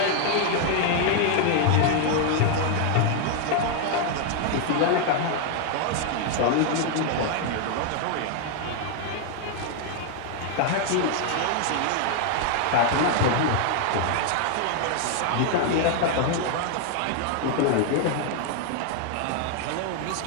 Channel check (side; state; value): both; different; correlation 0.00